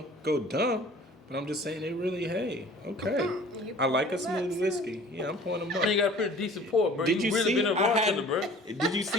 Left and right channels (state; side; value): normal; both; correlation 0.48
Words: go dumb, but I'm just saying it really, hey, okay. You I like a pour 'em up, smooth too. whiskey. Yeah, I'm pouring them up. Man, you got a pretty decent pour, bro. Did you really see? been a bartender, bro. Did you